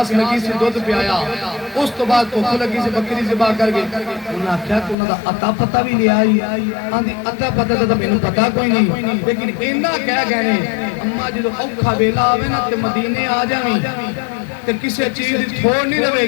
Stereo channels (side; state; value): right; drops out; at 5.0 s